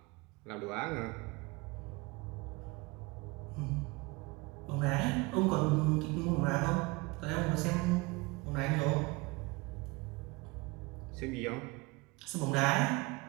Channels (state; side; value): quieter; left; 24.5 dB